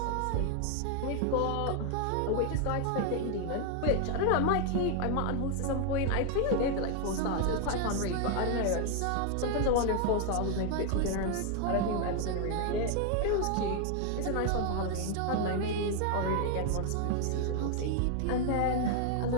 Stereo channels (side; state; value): both; different; correlation 0.01